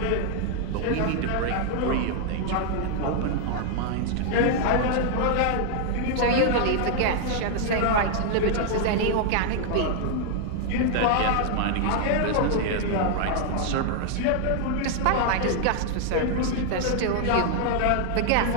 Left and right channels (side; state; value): both; different; correlation 0.00